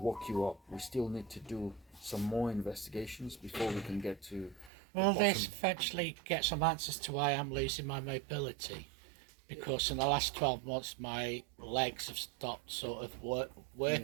you up. We still need to do some more investigations before we can get to. Will this eventually get some answers to why I'm losing my mobility? Because in the last 12 months my legs have stopped sort of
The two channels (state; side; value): drops out; left; at 4.7 s